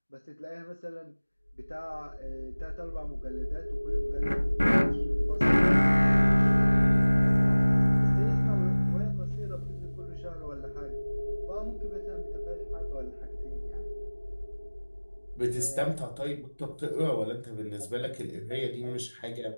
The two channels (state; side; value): inverted; both; correlation -1.00